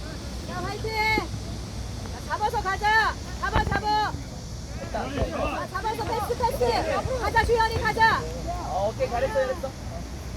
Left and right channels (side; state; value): both; identical; correlation 1.00